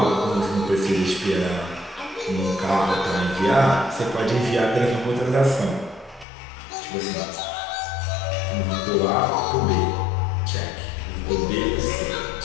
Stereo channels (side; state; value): right; drops out; at 6.2 s